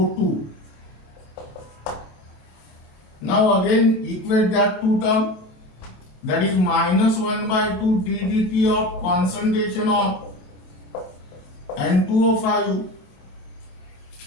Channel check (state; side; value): late; right; 28 ms